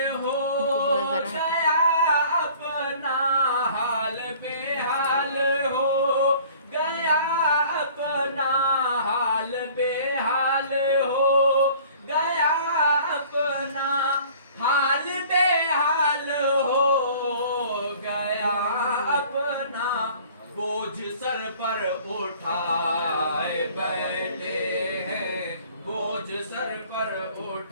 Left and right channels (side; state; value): both; inverted; correlation -0.50